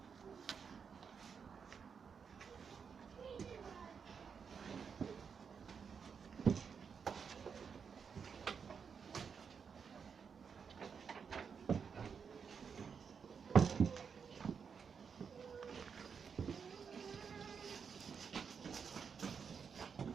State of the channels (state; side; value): quieter; left; 6.3 dB